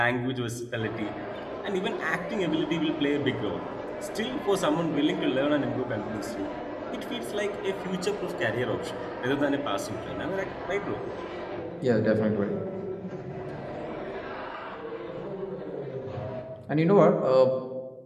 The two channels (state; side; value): identical; both; correlation 1.00